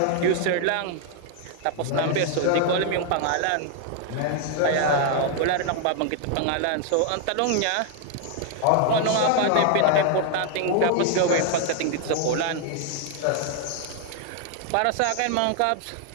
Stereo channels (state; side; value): different; both; correlation 0.00